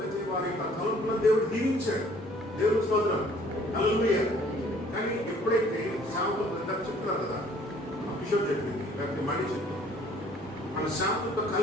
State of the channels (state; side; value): normal; both; correlation 0.57